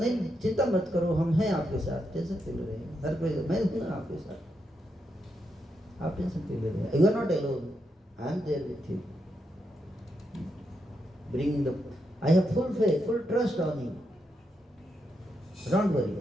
चिंता मत करो, हम हैं आपके साथ, टेंशन क्यों ले रहे हैं? हर कोई, मैं हूँ ना आपके साथ, आप टेंशन क्यों ले रहे हैं? You are not alone, I am there with you. Bringing the, I have full faith, full trust on you. Don't worry.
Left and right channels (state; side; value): normal; both; correlation 0.82